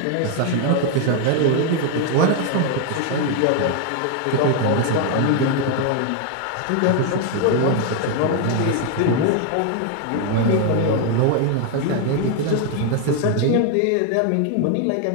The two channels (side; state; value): both; different; correlation 0.01